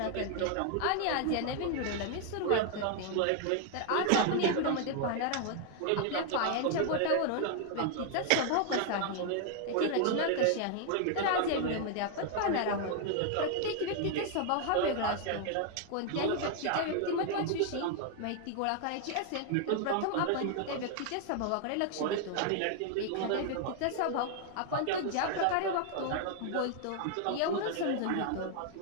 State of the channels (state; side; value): different; both; correlation 0.00